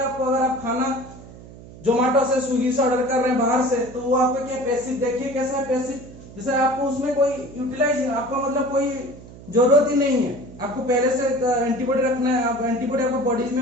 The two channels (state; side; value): noise; right; hum, 18 dB below the sound